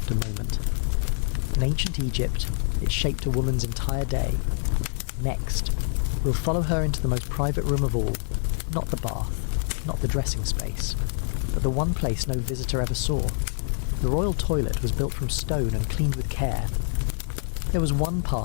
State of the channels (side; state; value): right; silent; 61 dB below the other